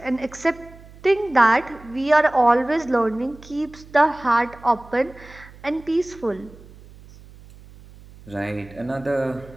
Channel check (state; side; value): noise; right; hum, 21 dB below the sound